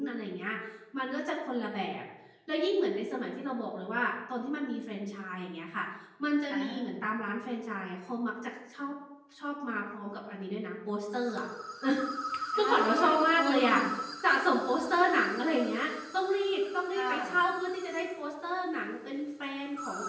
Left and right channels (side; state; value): both; identical; correlation 1.00